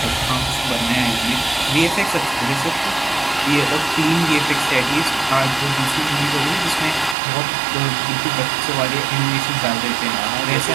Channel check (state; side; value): drops out; left; at 7.2 s